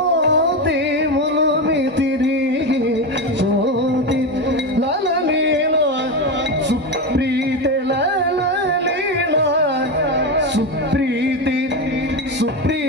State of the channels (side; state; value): both; normal; correlation 0.16